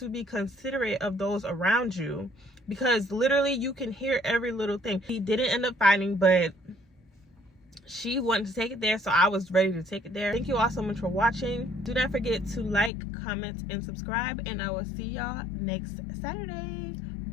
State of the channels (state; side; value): drops out; right; at 12.9 s